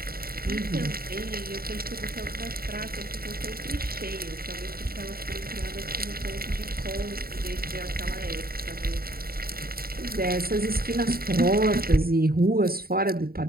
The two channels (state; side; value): late; left; 0.43 ms